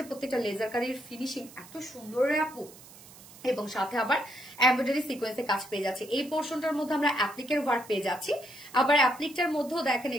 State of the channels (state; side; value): noise; right; hiss, 20 dB below the sound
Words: প্রত্যেকটা লেজার কারির ফিনিশিং এত সুন্দর রে আপু, এবং সাথে আবার এমব্রয়ডারি সিকোয়েন্সে কাজ পেয়ে যাচ্ছে। এই পোর্শনটার মধ্যে আমরা অ্যাপ্লিকের ওয়ার্ক পেয়ে যাচ্ছি, আবার অ্যাপ্লিকটার মধ্যেও দেখেন